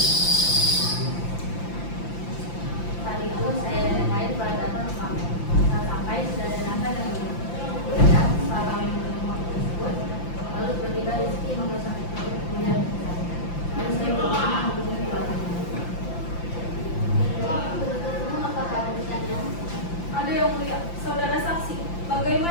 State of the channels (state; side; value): late; right; 5.8 ms